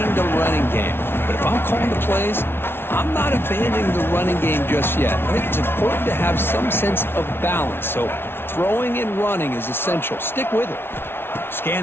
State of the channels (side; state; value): right; late; 0.11 ms